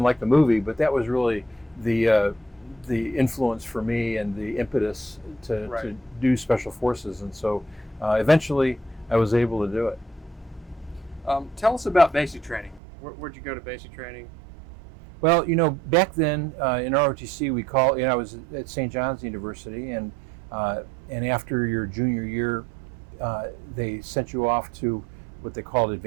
like the movie, but that was really the influence for me and the impetus to do Special Forces. And so eventually I was able to do it. Tell us about basic training. Where'd you go to basic training? Well, back then in ROTC, I was at St. John's University, and after your junior year, they sent you off to what they called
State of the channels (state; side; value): drops out; left; at 12.8 s